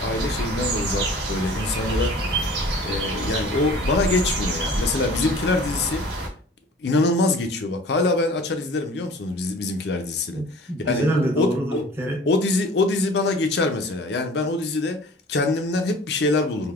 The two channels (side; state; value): both; normal; correlation 0.45